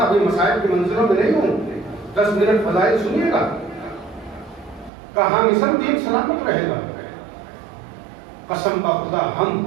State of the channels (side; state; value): left; drops out; at 4.9 s